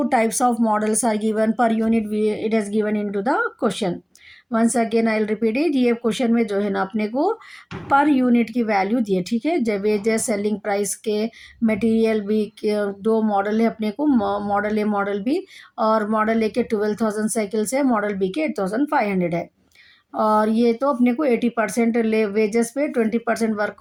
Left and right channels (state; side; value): identical; both; correlation 1.00